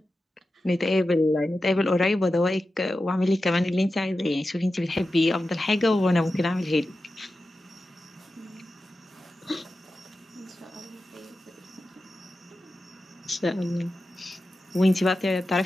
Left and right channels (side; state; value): both; normal; correlation 0.92